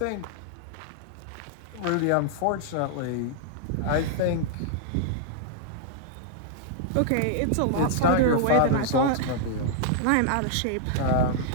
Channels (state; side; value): different; both; correlation -0.01